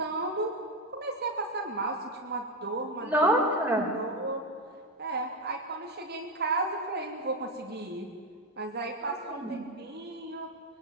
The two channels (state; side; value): normal; both; correlation 0.11